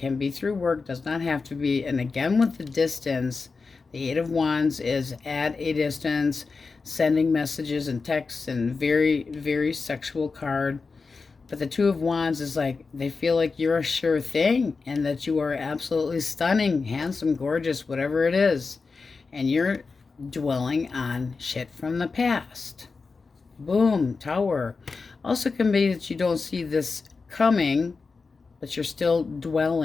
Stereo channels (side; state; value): right; quieter; 4.4 dB